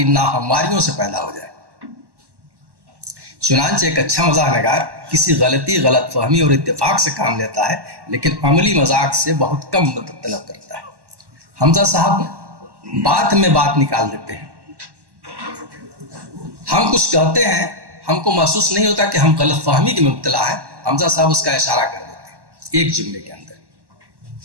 ناہمواریوں سے پیدا ہو جائے۔ چنانچہ ایک اچھا مزاح نگار کسی غلطی، غلط فہمی اور اتفاق سے کام لیتا ہے، لیکن عملی مذاق سے بہت کم مدد طلب کرتا ہے۔ حمزہ صاحب بات میں بات نکال دیتے ہیں۔ ہم کچھ کہتے ہیں، ہم کو محسوس نہیں ہوتا کہ ہم غلط فہمی کی مبتلا ہیں، حمزہ صاحب اس کا اشارہ کر دیتے ہیں ایک جملے کے اندر۔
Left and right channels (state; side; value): late; left; 1.1 ms